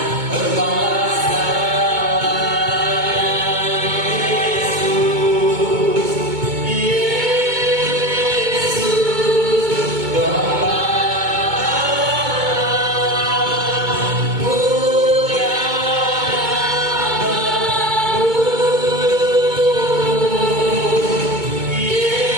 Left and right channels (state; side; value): late; left; 2.2 ms